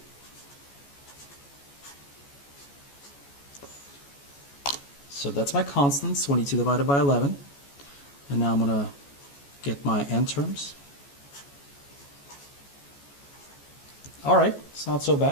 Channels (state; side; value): late; right; 14 ms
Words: So that's my constants, 22 divided by 11. And now I'm going to get my n terms. Alright, it's not so